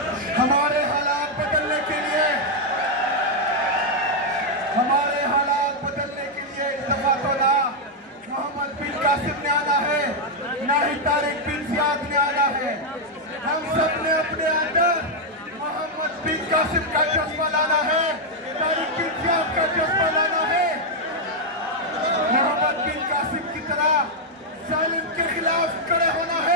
हमारे हालात बदलने के लिए इस दफा तो ना मोहम्मद बिन कासिम ने आना है, ना ही तारिक बिन जियाद ने आना है। हम सब ने अपने अंदर मोहम्मद बिन कासिम का जज्बा लाना है, तारिक बिन जियाद का जज्बा लाना है। मोहम्मद बिन कासिम की तरह जालिम के खिलाफ खड़े होना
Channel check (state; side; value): normal; both; correlation -0.02